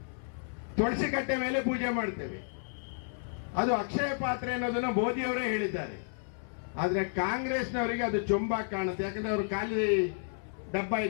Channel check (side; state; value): right; silent; 57 dB below the other